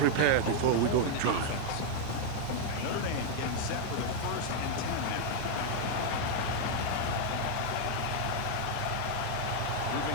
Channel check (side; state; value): both; different; correlation 0.00